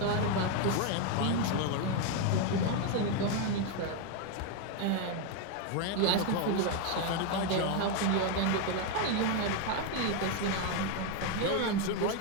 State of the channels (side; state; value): both; different; correlation 0.01